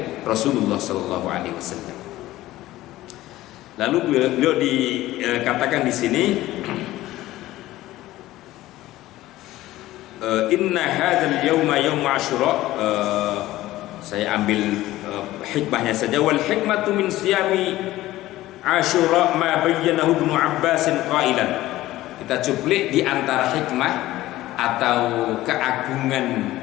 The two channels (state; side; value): quieter; right; 16.1 dB